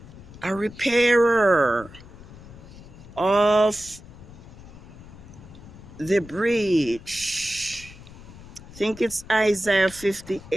a repairer of the breach. I think it's Isaiah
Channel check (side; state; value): left; noise; rumble, 17 dB below the sound